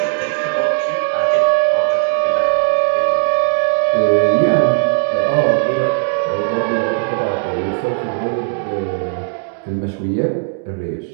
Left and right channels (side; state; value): left; silent; digital silence